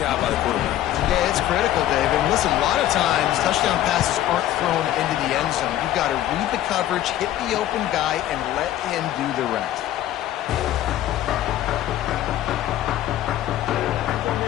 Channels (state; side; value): quieter; right; 13.0 dB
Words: by the quarterback. Yeah, it's critical, David. And listen, a lot of times touchdown passes aren't thrown into the end zone. You've got to read the coverage, hit the open guy, and let him do the rest.